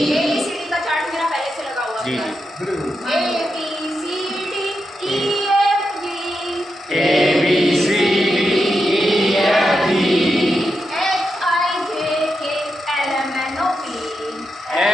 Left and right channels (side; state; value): both; normal; correlation 0.86